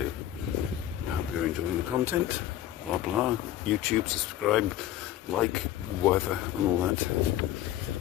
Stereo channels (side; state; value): right; quieter; 12.8 dB